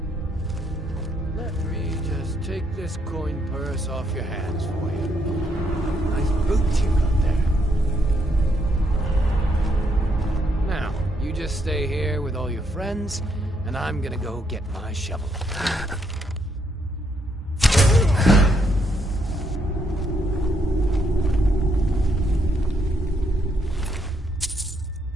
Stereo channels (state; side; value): normal; both; correlation 0.75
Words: Let me just take this coin purse off your hands for you. Nice boots you got there. Now, you just stay here with all your friends, and I'm gonna go get my shovel.